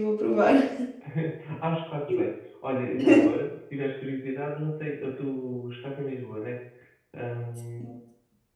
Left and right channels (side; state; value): both; identical; correlation 1.00